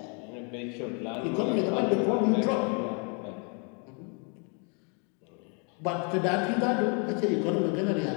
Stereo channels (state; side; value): quieter; right; 37.7 dB